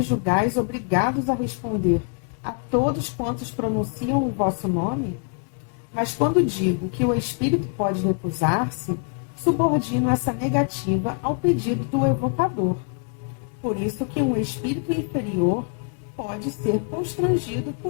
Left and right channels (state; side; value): quieter; right; 38.2 dB